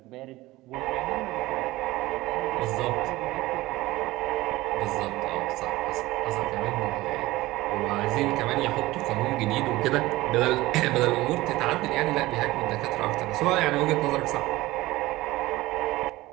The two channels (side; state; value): left; quieter; 18.5 dB